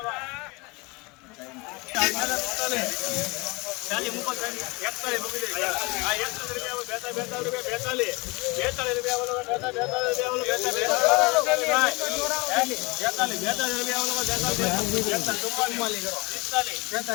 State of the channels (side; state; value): right; quieter; 26.3 dB